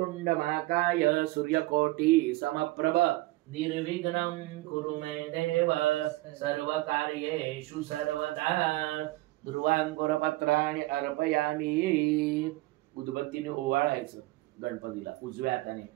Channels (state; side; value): quieter; left; 19.9 dB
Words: महाकाय सूर्यकोटि समप्रभ निर्विघ्नं कुरु मे देव सर्वकार्येषु सर्वदा. दुर्वांकुरपत्राणि अर्पयामि. उदबत्तीने ओवाळायचं गणपतीला. उजव्या हाताने.